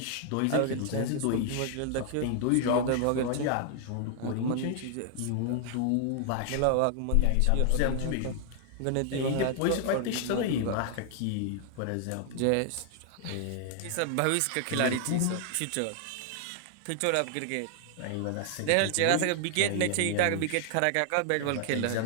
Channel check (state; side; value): different; both; correlation 0.00